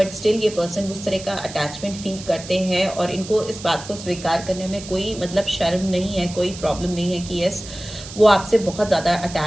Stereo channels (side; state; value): right; noise; hiss, 14 dB below the sound